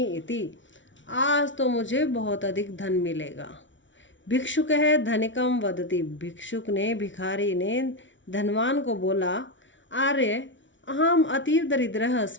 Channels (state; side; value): late; right; 0.55 ms